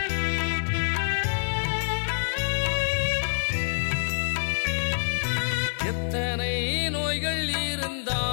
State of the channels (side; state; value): right; silent; digital silence